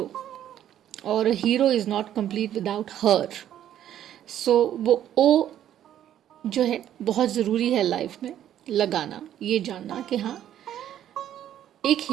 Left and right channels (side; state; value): left; quieter; 11.1 dB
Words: or a hero is not complete without her. So वो O जो है बहुत ज़रूरी है लाइफ में लगाना, ये जानना कि हाँ एक